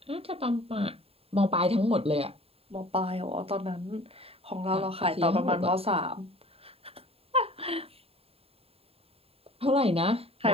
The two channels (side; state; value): left; late; 0.28 ms